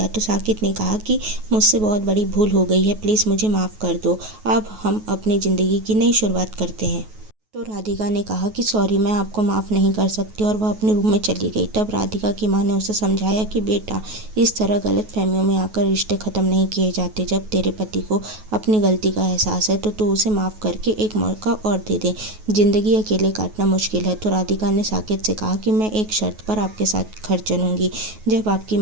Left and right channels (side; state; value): left; late; 9.3 ms